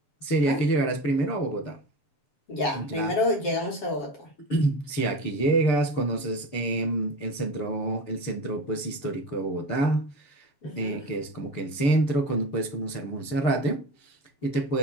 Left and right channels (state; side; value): late; right; 6.8 ms